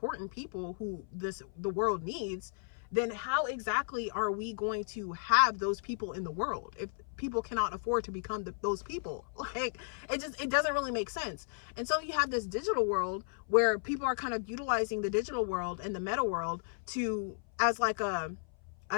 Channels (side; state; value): right; silent; 55 dB below the other